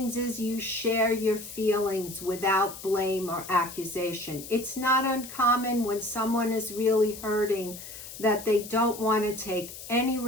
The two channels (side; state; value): left; noise; hiss, 13 dB below the sound